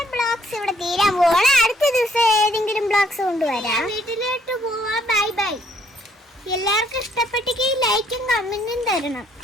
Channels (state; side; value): normal; both; correlation 0.67